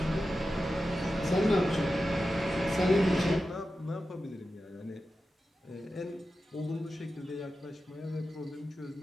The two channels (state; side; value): normal; both; correlation 0.92